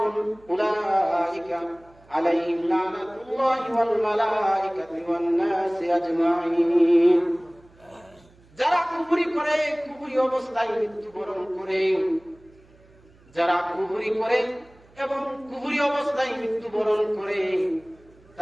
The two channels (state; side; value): noise; right; hum, 28 dB below the sound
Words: উলাইকা আলাইহিম লানাতুল্লাহি ওয়াল মালাইকাতি ওয়ান নাসি আজমাইন। যারা কুফরি করে, কুফরি অবস্থায় মৃত্যুবরণ করে, যারা কুফরি করে এবং কুফরি অবস্থায় মৃত্যুবরণ করে